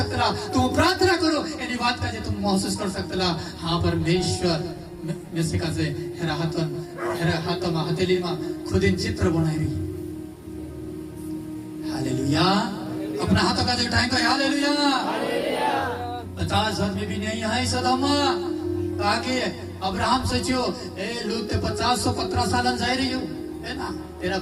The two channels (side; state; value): both; identical; correlation 1.00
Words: ला तुम प्रार्थना करो यानी बात का जे तुम महसूस कर सकते ला हाँ परमेश्वर में से का जे हेरा हाथों में हथेली में खुद इन चित्र बनाई रही हालेलुया अपना हाथों का जो उठाएंगे हालेलुया 50 में भी नहीं है सदमा ताकि अब्राहम सोचियो ए लोग ते 50-15 साल जाए रही हो है ना तेरा